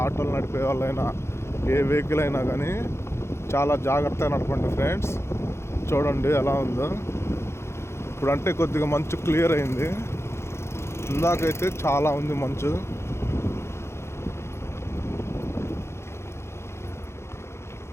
ఆటోలు నడిపే వాళ్ళైనా, ఏ వెహికల్ అయినా కానీ చాలా జాగ్రత్తగా నడపండి ఫ్రెండ్స్. చూడండి ఎలా ఉందో. ఇప్పుడంటే కొద్దిగా మంచు క్లియర్ అయింది, ఇందాకైతే చాలా ఉంది మంచు.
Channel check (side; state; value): right; late; 0.13 ms